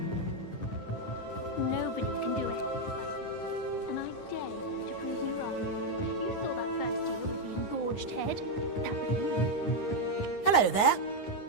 Nobody can do it. And I dare you to prove me wrong. You saw that first deal with the engorged head. That was me. Hello there.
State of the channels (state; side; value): late; right; 9.7 ms